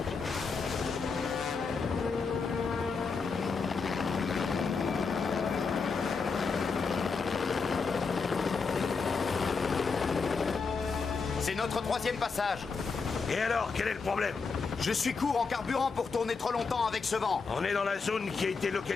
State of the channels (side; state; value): right; quieter; 4.9 dB